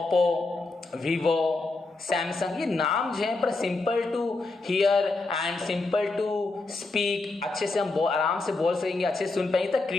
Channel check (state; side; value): quieter; right; 3.4 dB